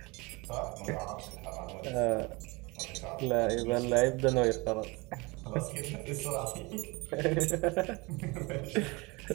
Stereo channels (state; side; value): quieter; left; 25.6 dB